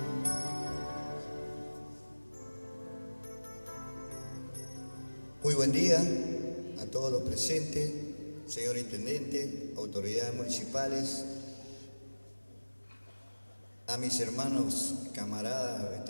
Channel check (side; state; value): both; inverted; correlation -1.00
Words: Muy buen día a todos los presentes, señor Intendente, autoridades municipales, a mis hermanos, camaradas,